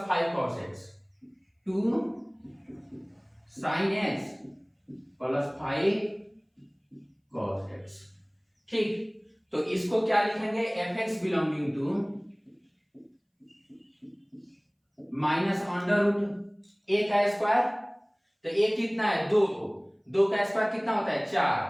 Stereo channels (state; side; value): identical; both; correlation 1.00